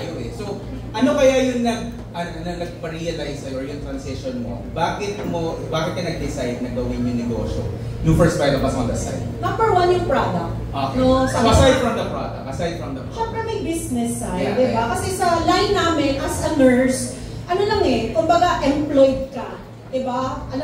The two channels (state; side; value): identical; both; correlation 1.00